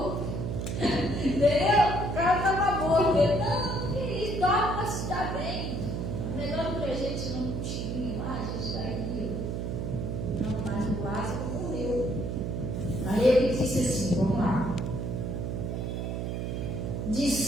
Entendeu? O cara estava morto. Ele, não, que isso, dorme, mas está bem. Melhor do que a gente tirando cochilinho lá, a gente está aqui. Não, mas o Lázaro morreu. Aí ele disse assim, vamos lá.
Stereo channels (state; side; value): noise; right; hum, 2 dB below the sound